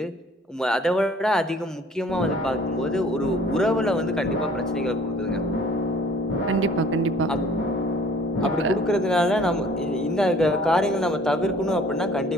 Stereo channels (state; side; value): normal; both; correlation 0.53